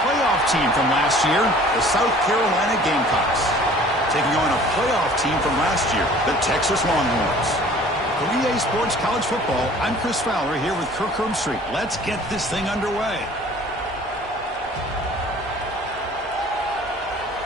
playoff team from last year, the South Carolina Gamecocks, taking on a playoff team from last year, the Texas Longhorns. For EA Sports College Football, I'm Chris Fowler here with Kirk Herbstreit. Let's get this thing underway.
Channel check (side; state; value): both; normal; correlation 0.50